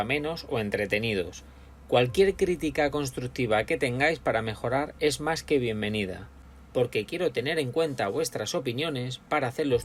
o entretenidos. Cualquier crítica constructiva que tengáis para mejorar es más que bienvenida, porque quiero tener en cuenta vuestras opiniones para hacer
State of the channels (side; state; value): both; identical; correlation 1.00